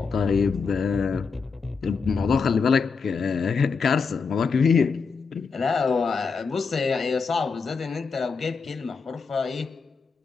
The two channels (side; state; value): right; quieter; 5.2 dB